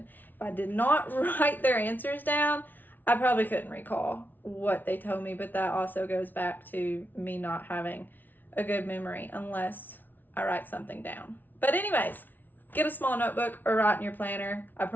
If I did not write their answers down, I probably couldn't recall what they told me, but that also goes back to me not having a good memory unless I write something down. But anyways, get a small notebook or write in your planner. I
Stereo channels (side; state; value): right; late; 0.086 ms